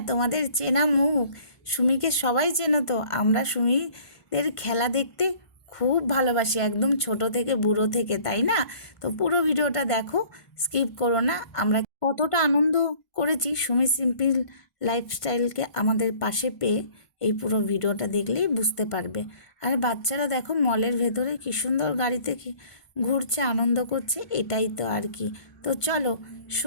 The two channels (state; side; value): late; right; 1.5 ms